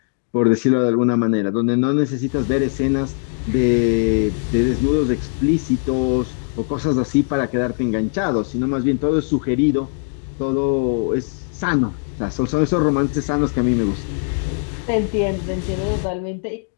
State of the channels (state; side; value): silent; right; 64 dB below the other